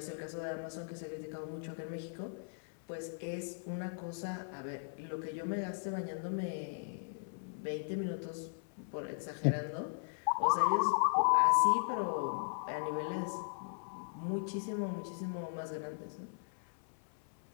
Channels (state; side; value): silent; right; 53 dB below the other